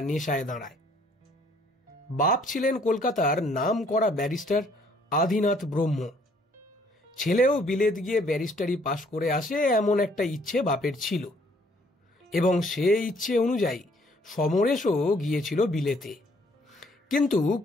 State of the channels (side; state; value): both; normal; correlation 0.63